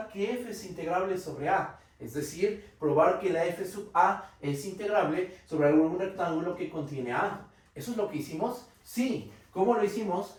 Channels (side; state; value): both; identical; correlation 1.00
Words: que f es integrable sobre A. Es decir, probar que la f sub A es integrable sobre algún rectángulo que contiene A. ¿Eso es lo que hicimos? Sí. ¿Cómo lo hicimos?